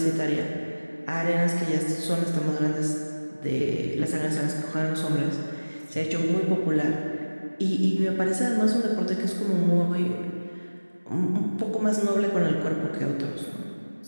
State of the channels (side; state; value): both; inverted; correlation -1.00